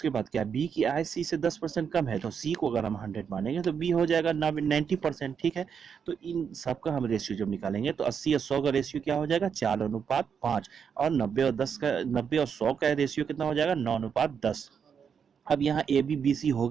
बाद क्या, बी की आय सी से 10% कम है तो सी को अगर हम 100 मानेंगे तो बी हो जाएगा 90%। ठीक है, तो इन सबका हम रेशियो जब निकालेंगे तो 80 और 100 का रेशियो क्या हो जाएगा 4:5, और 90 और 100 का रेशियो कितना हो जाएगा 9:10। अब यहाँ ए बी बी सी हो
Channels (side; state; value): left; quieter; 7.0 dB